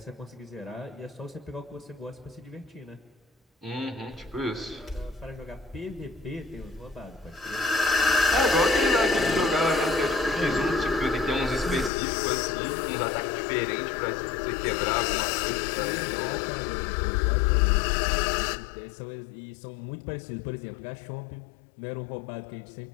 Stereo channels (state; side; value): drops out; right; at 11.9 s